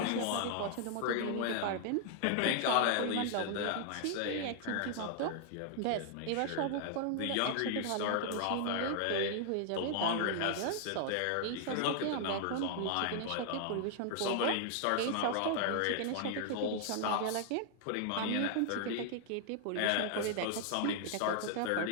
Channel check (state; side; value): different; both; correlation -0.01